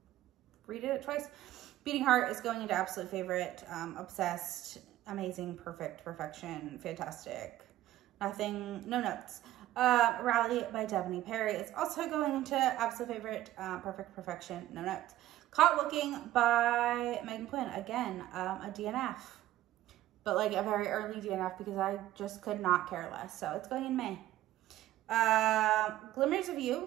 redid it twice. Beating Heart is going into absolute favorite. Obsessed, amazing, perfect, perfection, fantastic. Nothing, no notes. Rally by Jenni Bar is also going into absolute favorite. Perfect, perfection, no notes. Caught Looking by Megan Quinn. Again, a DNF. But like a very early DNF because I just could not care less. So it's going in May. Glimmers of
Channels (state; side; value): quieter; left; 14.4 dB